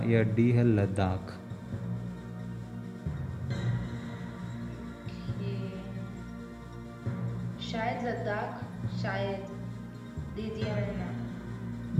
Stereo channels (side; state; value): both; identical; correlation 1.00